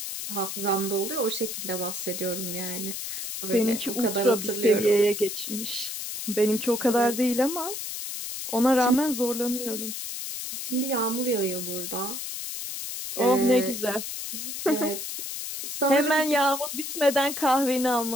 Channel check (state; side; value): noise; left; hiss, 6 dB below the sound